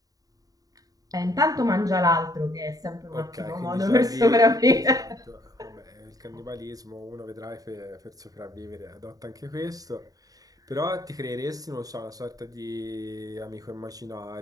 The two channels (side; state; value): left; late; 0.18 ms